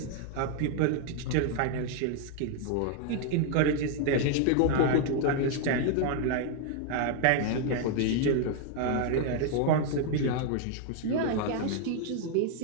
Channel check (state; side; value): different; both; correlation 0.00